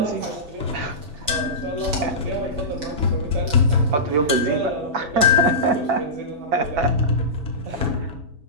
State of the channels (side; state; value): left; late; 6.1 ms